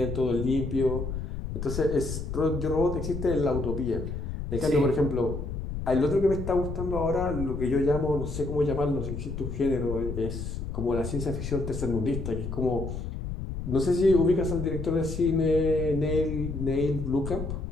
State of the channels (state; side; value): noise; left; rumble, 5 dB below the sound